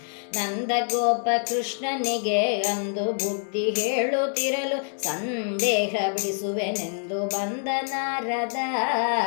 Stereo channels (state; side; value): silent; right; 61 dB below the other